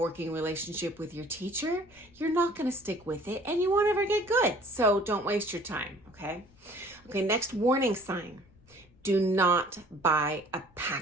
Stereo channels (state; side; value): noise; left; rumble, 29 dB below the sound